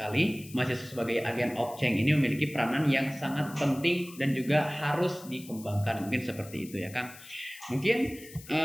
Mahasiswa sebagai agen of change ini memiliki peranan yang sangat penting dan juga harus dikembangkan. Mungkin seperti itu ya Kang. Mungkin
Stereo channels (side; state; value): left; noise; hiss, 18 dB below the sound